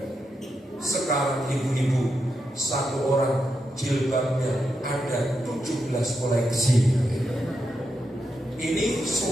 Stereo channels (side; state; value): both; normal; correlation 0.85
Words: Sekarang ibu-ibu 1 orang jilbabnya ada 17 koleksi. Ini